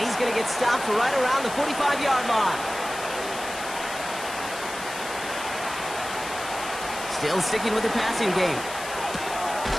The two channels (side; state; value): left; noise; hiss, 11 dB below the sound